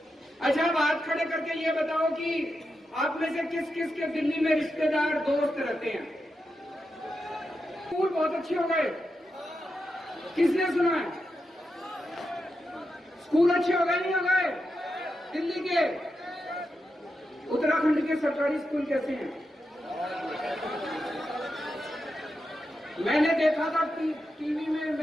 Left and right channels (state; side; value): normal; both; correlation 0.87